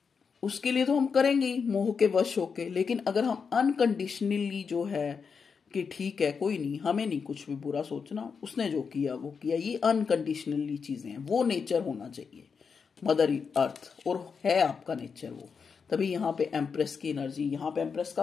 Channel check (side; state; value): right; quieter; 5.8 dB